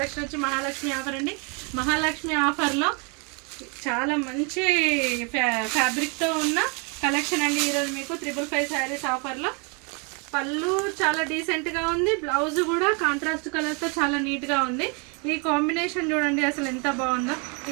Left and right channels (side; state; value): left; quieter; 33.9 dB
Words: వచ్చి Mahalakshmi offer అండి. మహాలక్ష్మి ఆఫర్లో చాలా మంచి ఫ్యాబ్రిక్తో ఉన్న కలెక్షన్ అండి. ఈరోజు మీకు 555 శారీస్ ఆఫర్లో. పళ్ళు చాలా డీసెంట్గా ఉంది, బ్లౌజ్ కూడా కాంట్రాస్ట్ కలర్తో చాలా నీట్గా ఉంది. ఈ కాంబినేషన్ చూడండి అసలు ఎంత బాగుందో.